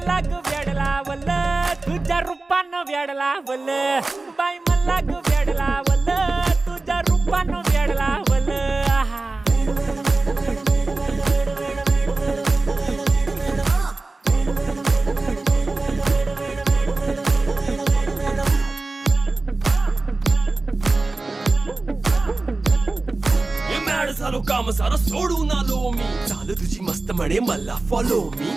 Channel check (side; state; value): left; quieter; 3.3 dB